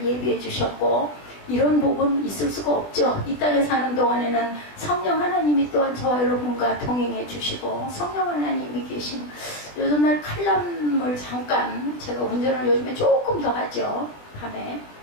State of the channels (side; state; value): right; late; 20 ms